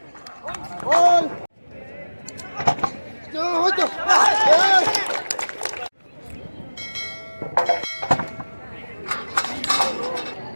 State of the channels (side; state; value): both; inverted; correlation -1.00